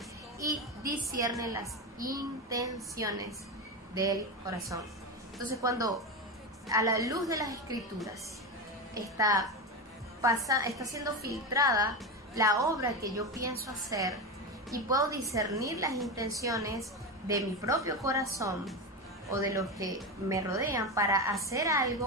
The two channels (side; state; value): both; normal; correlation 0.17